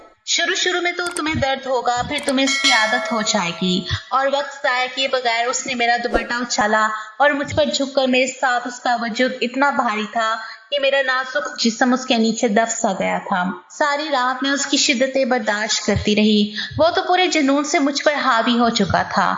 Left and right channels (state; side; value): identical; both; correlation 1.00